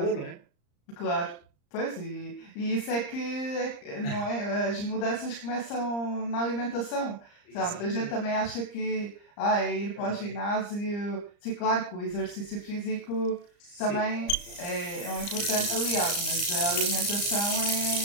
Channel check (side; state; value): right; late; 34 ms